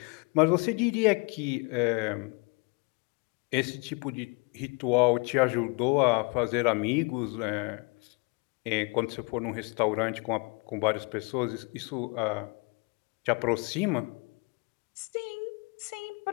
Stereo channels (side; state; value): right; quieter; 30.7 dB